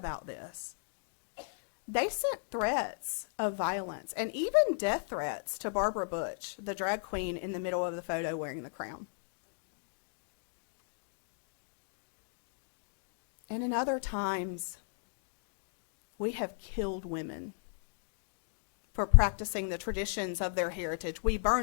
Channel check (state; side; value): silent; right; digital silence